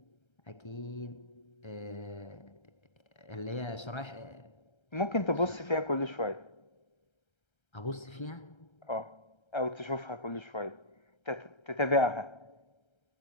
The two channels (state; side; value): late; right; 1.3 ms